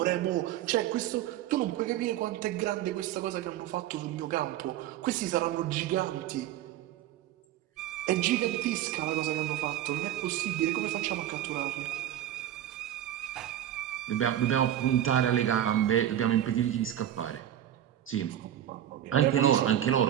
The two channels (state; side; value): quieter; left; 11.6 dB